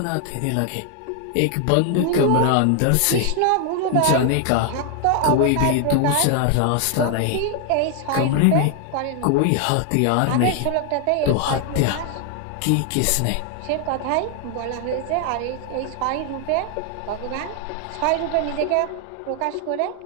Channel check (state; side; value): different; both; correlation 0.00